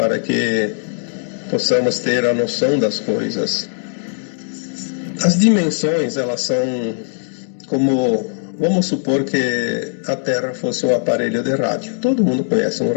que possamos ter a noção das coisas. As dimensões, elas são como, vamos supor que a Terra fosse um aparelho de rádio. Todo mundo conhece um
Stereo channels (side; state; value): right; silent; digital silence